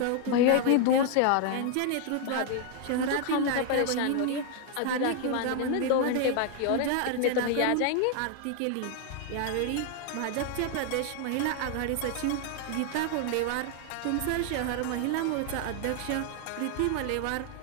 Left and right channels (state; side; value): different; both; correlation 0.00